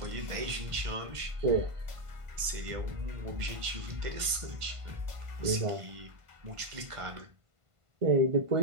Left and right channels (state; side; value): late; left; 1.5 ms